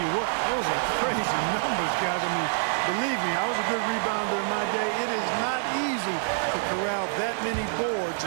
what, those are crazy numbers, guys. I mean, believe me, I was a good rebounder in my day. It is not easy to corral that many boards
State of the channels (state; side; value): silent; left; 60 dB below the other